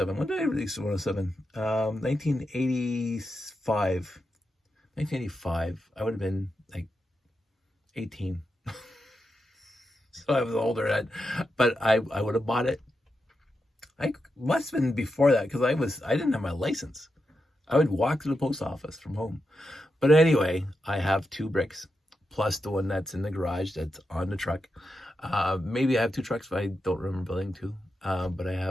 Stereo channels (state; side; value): normal; both; correlation 0.87